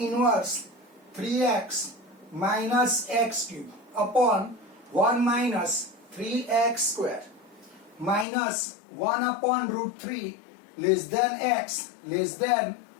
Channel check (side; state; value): right; drops out; at 8.2 s